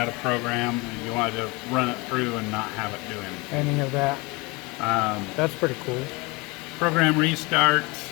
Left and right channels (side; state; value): right; quieter; 25.9 dB